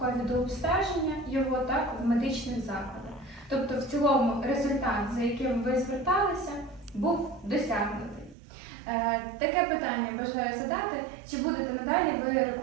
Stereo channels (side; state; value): left; drops out; at 8.3 s